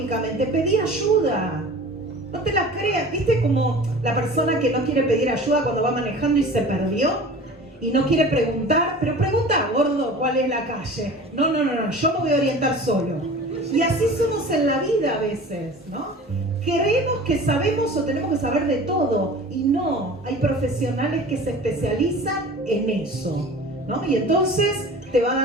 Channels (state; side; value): normal; both; correlation 0.40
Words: pedí ayuda. No te la creas. ¿Viste como la persona que no quiere pedir ayuda cuando va manejando y se perdió? Y no quiere preguntar, pero pregunta, gordo, ¿cuál es la calle? No, yo me voy a orientar solo. Y así somos en la vida a veces, ¿no? Creemos que sabemos o tenemos que saber de todo. Y no, hay profesionales que se especializan en eso, ¿no? Y entonces te va a